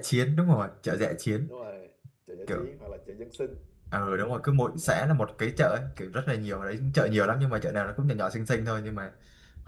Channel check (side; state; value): both; identical; correlation 1.00